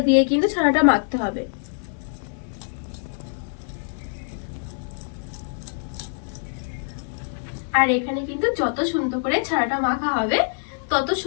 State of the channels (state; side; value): silent; right; digital silence